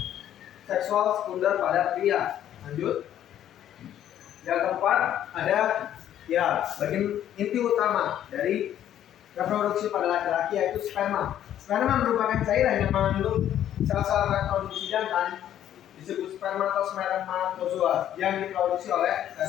seksual sekunder pada pria. Lanjut. Yang keempat ada bagian inti utama dari reproduksi pada laki-laki yaitu sperma. Sperma merupakan cairan yang mengandung sel-sel reproduksi jantan disebut spermatozoa yang diproduksi oleh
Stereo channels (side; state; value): right; quieter; 11.1 dB